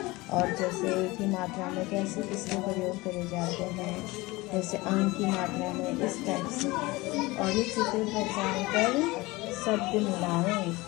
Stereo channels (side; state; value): right; quieter; 21.7 dB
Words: और जैसे ई की मात्रा में कैसे किसके प्रयोग करे जाते हैं, जैसे अंग की मात्रा में इस टाइप से। और ये चित्र पहचान कर शब्द मिलाएं,